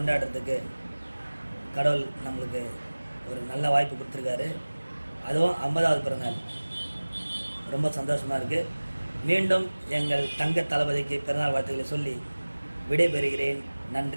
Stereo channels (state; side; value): inverted; both; correlation -1.00